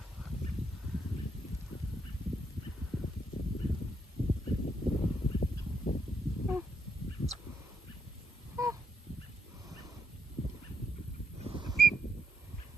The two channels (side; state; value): both; normal; correlation 0.76